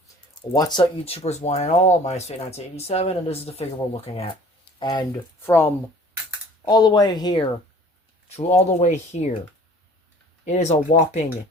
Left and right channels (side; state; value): both; normal; correlation 0.49